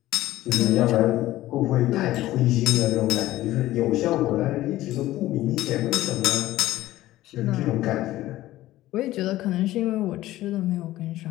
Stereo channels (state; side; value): quieter; right; 15.7 dB